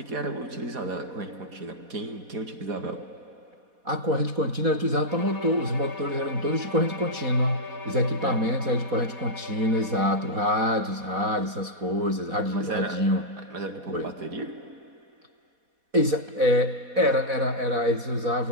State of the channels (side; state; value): left; late; 4.1 ms